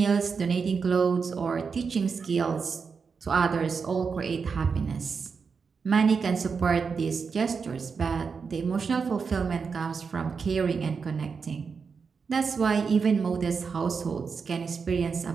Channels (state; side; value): quieter; left; 5.5 dB